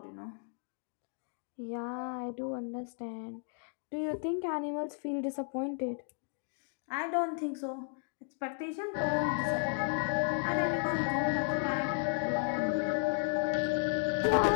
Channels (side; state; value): right; silent; 55 dB below the other